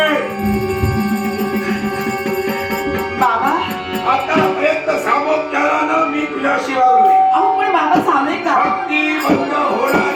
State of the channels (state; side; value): identical; both; correlation 1.00